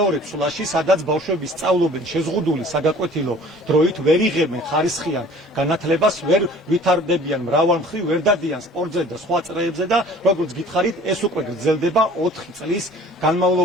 ცვლაში, სადაც ბავშვები სწავლობენ შეზღუდული საგაკვეთილო დროით, ვერ იღებენ ხარისხიან განათლებას, ვერ ვითარდებიან მრავალმხრივ, ვერ დადიან სპორტზე და სხვა წრეებზე და როგორც გითხარით, ეს უკვე გრძელდება 4 წლის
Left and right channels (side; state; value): both; normal; correlation 0.49